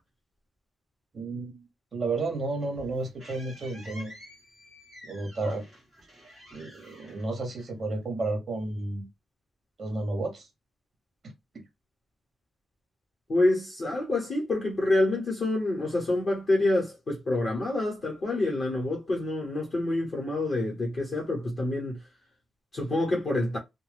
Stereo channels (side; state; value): both; normal; correlation 0.86